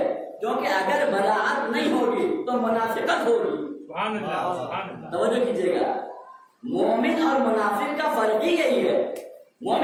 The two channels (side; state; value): both; identical; correlation 1.00